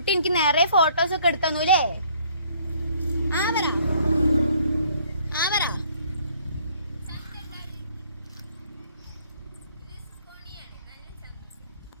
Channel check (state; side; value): inverted; both; correlation -0.61